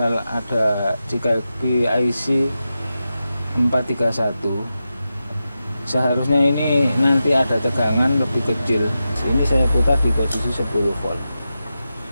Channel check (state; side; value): inverted; both; correlation -0.91